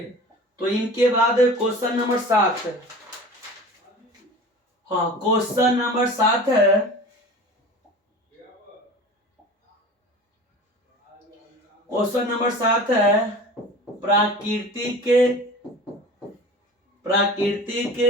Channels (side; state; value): both; normal; correlation 0.38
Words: तो इनके बाद क्वेश्चन नंबर 7 है। हाँ क्वेश्चन नंबर 7 है, क्वेश्चन नंबर 7 है प्राकृतिक